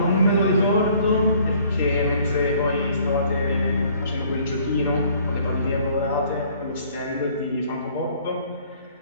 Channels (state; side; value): inverted; both; correlation -0.59